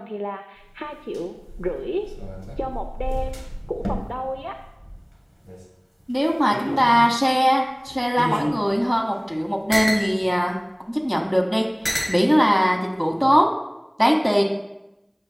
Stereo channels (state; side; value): identical; both; correlation 1.00